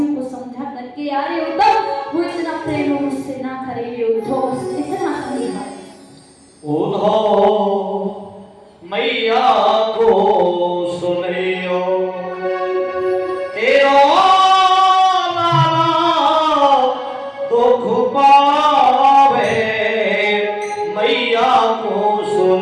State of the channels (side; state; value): both; identical; correlation 1.00